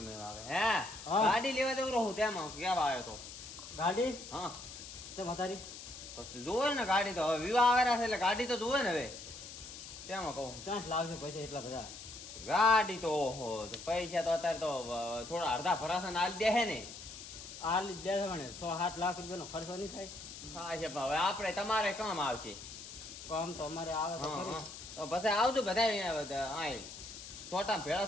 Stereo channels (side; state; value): left; noise; hiss, 12 dB below the sound